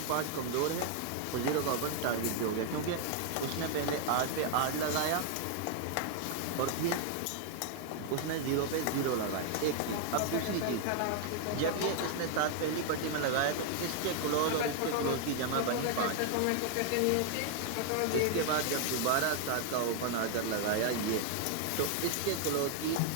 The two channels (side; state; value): both; different; correlation 0.00